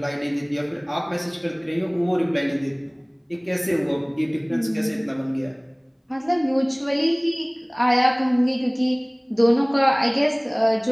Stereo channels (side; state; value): both; identical; correlation 1.00